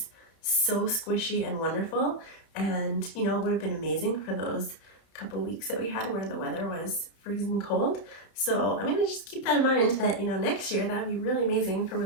so squishy and wonderful. And you know, it would have been amazing for those couple weeks that we had where the weather was freezing cold. So I'm gonna just keep that in mind that, you know, next year that would be really amazing for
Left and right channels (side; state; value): right; late; 31 ms